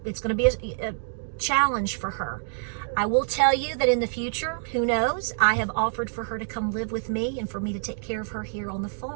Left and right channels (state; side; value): silent; left; digital silence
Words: going to be a challenge for her. I will tell you that in the future, who knows, I have offered for her to come live with me and for me to take care of her here on the